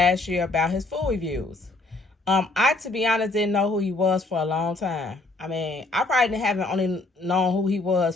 year about his food reviews. I, to be honest, didn't know who he was for a long time. I mean, I probably haven't only known who he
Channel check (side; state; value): right; quieter; 3.1 dB